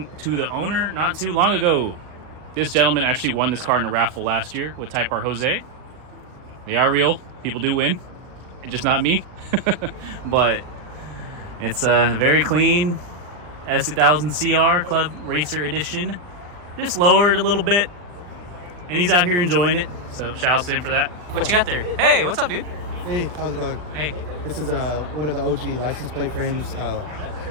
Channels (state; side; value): late; left; 40 ms